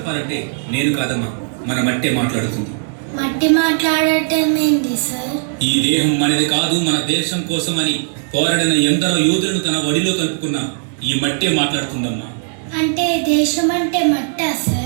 నేను కాదమ్మా, మన మట్టే మాట్లాడుతుంది. మట్టి మాట్లాడటం ఏంటి సార్? ఈ దేహం మనది కాదు, మన దేశం కోసం అని పోరాడిన ఎందరో యోధులను తన ఒడిలో కలుపుకున్న ఈ మట్టే మాట్లాడుతుందమ్మా. అంటే దేశం అంటే మట్టా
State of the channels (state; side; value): silent; left; digital silence